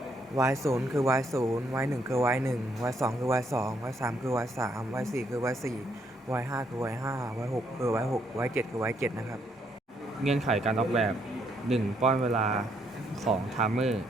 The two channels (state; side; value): normal; both; correlation 0.72